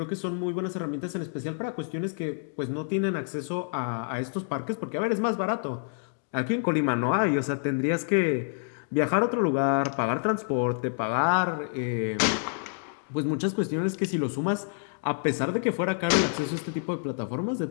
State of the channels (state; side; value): silent; right; digital silence